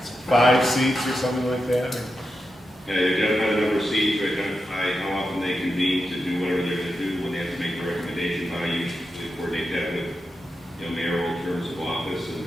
5 seats or something like that? or- Identify the number of seats, identify how often they convene to do whatever they're gonna do, when they have to make the recommendation, how you usually coordinate that with, mayoral terms of office, and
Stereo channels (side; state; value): both; normal; correlation 0.89